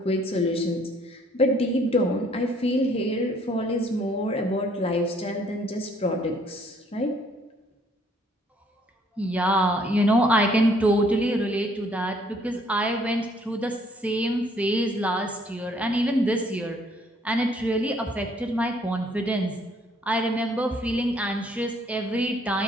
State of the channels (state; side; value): normal; both; correlation 0.63